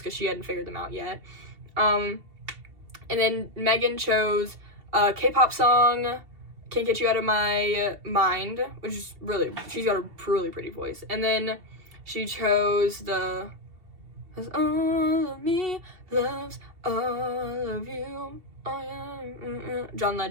she hadn't figured them out yet. And then Megan chose a K-pop song, Can't Get You Out of My Mind, which is she's got a really pretty voice. And then she chose the 'Cause all of me loves all of you. Oh yeah, John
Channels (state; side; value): late; left; 2.7 ms